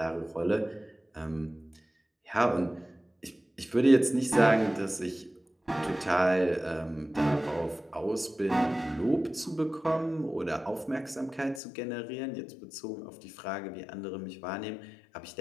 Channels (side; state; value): right; drops out; at 11.6 s